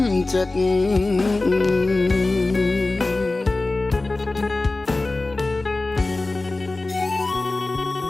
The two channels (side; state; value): right; quieter; 3.1 dB